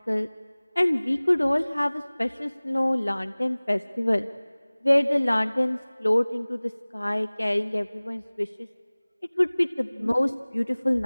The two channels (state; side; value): inverted; both; correlation -1.00